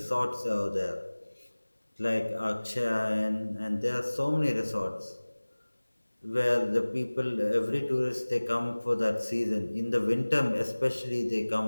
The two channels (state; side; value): inverted; both; correlation -1.00